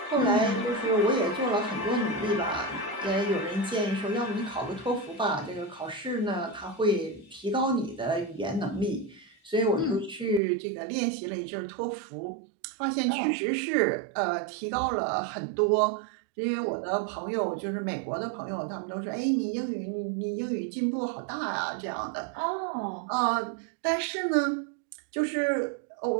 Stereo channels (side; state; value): left; drops out; at 10.4 s